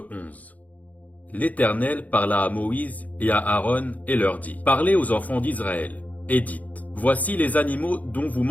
11. L'Éternel parla à Moïse et à Aaron et leur dit: Parlez aux enfants d'Israël, et dites: Voici les animaux dont vous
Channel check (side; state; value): right; late; 0.075 ms